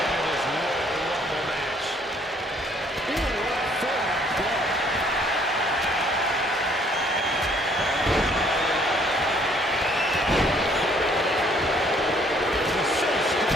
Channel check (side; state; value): both; normal; correlation 0.62